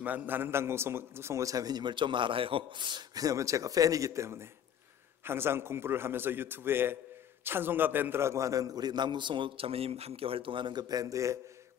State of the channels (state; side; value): quieter; right; 9.3 dB